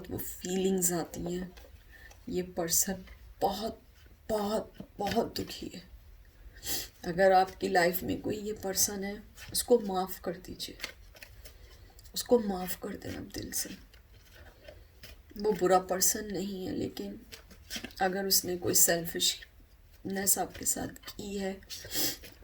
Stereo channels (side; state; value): both; identical; correlation 1.00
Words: वो फीलिंग्स आती हैं। ये पर्सन बहुत बहुत बहुत दुखी है। अगर आपकी लाइफ में कोई ये पर्सन है, उसको माफ़ कर दीजिए, उसको माफ़ कर देना दिल से। वो बुरा पर्सन नहीं है, लेकिन अगर उसने कोई सेल्फिशनेस आपके साथ की है,